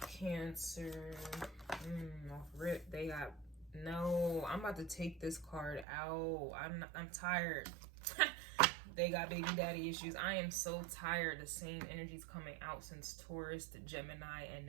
Cancer? Off rip, they got no. I'm about to take this card out. I'm tired. They got baby daddy issues. I am so tired. The same energy's coming out since Taurus to Gemini, and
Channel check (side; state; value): left; drops out; at 5.9 s